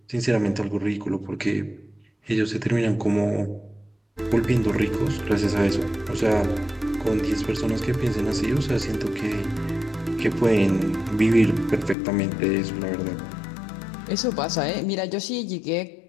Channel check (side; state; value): right; drops out; at 12.0 s